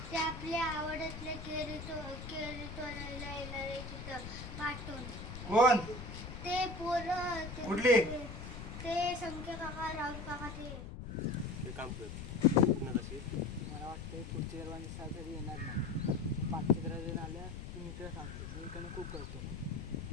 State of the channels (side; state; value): left; noise; rumble, 9 dB below the sound